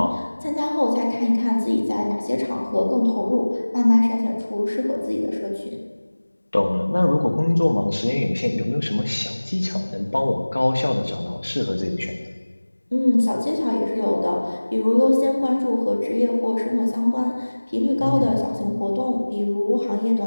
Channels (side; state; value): both; inverted; correlation -1.00